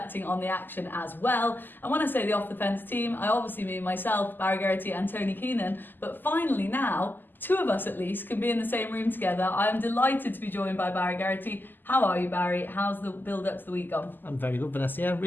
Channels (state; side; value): late; right; 0.091 ms